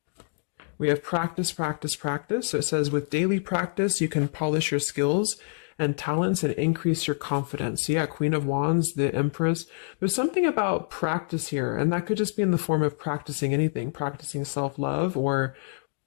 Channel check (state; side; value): silent; right; digital silence